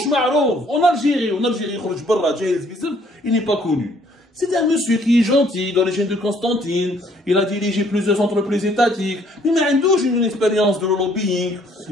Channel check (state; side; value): normal; both; correlation 0.63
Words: m'arrove, en Algérie, il n'est pas connu. C'est un monsieur qui est gentil, d'origine de Constantine, il a dirigé plusieurs entreprises étatiques, mais il a une expérience de lobbying,